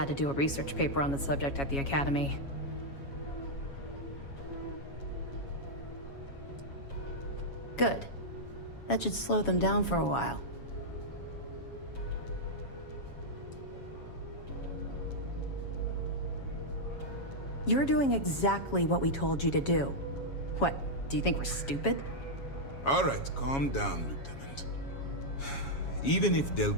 to do a research paper on the subject at the Academy. Good. That should slow them down for a while. You're doing exactly what we told you to do. What, do you think we're stupid? All right, calm down, Lieutenant. Even if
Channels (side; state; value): right; late; 7.2 ms